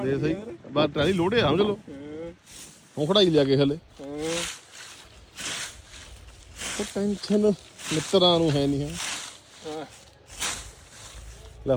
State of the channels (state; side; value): identical; both; correlation 1.00